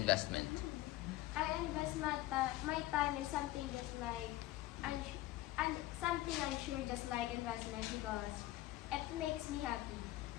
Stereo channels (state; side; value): quieter; right; 16.4 dB